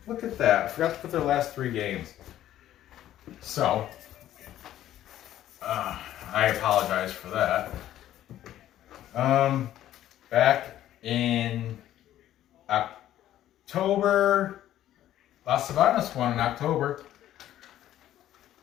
Look at that. I forgot to put their last 3 games. So, I apologize for that. Back in October, Las Sabanas won in October.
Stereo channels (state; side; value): quieter; right; 12.6 dB